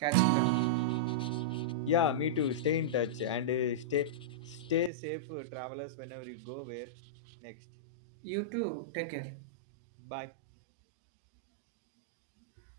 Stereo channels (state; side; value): drops out; left; at 4.9 s